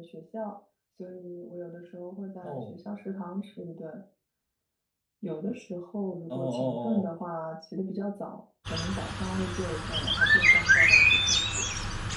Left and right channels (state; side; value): identical; both; correlation 1.00